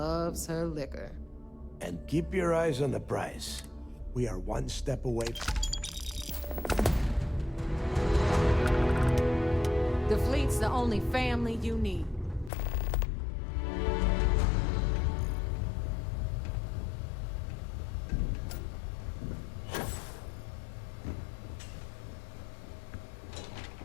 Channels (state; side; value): drops out; right; at 12.5 s